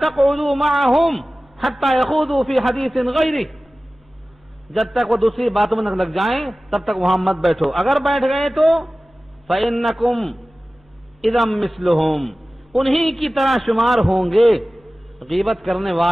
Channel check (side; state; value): both; normal; correlation 0.97